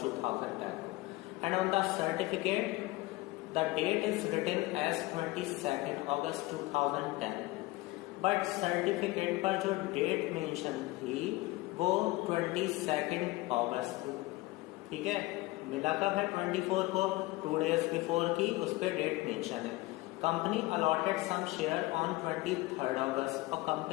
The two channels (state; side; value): quieter; right; 20.4 dB